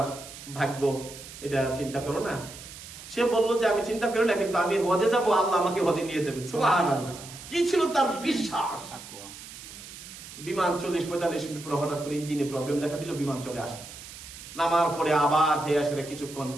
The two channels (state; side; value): noise; right; hiss, 14 dB below the sound